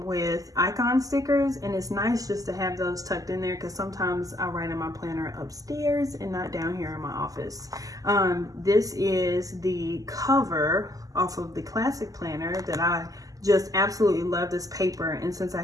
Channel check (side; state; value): left; late; 0.17 ms